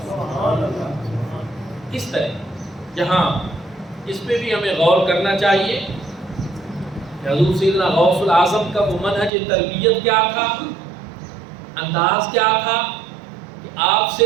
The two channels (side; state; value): left; drops out; at 9.3 s